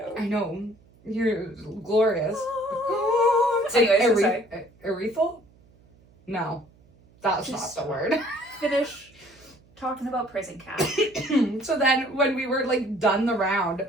I know. You're glorious. Anyways, I'm sorry. Urethral? No. That's Just not the word. Finish talking about prison cat. So then when we were like done the round,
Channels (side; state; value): right; noise; hum, 29 dB below the sound